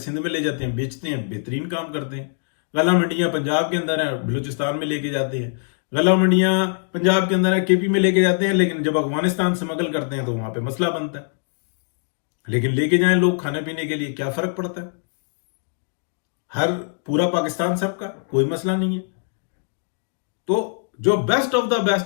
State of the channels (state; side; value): silent; right; digital silence